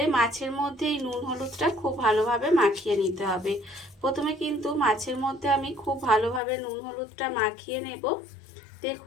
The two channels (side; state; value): right; drops out; at 6.4 s